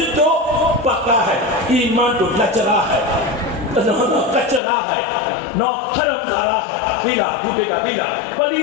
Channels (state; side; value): drops out; right; at 4.6 s